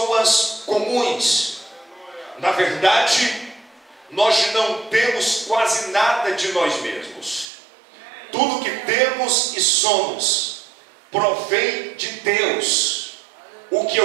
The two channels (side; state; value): left; drops out; at 7.5 s